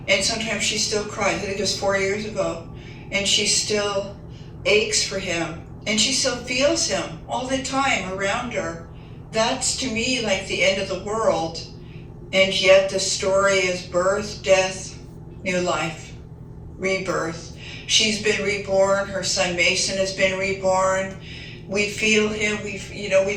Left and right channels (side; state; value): both; identical; correlation 1.00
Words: And sometimes she still cries. I think it was 4 years ago. And she still aches for him. And she still feels him all the time around her. That's to me like the end of the world. And yet the story is birth, death, new life, rebirth. She's been reborn. Her son Mason has been reborn. We feel him. We